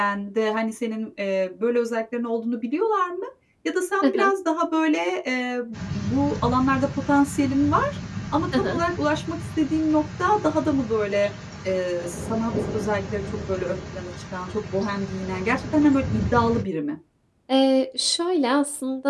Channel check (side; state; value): both; identical; correlation 1.00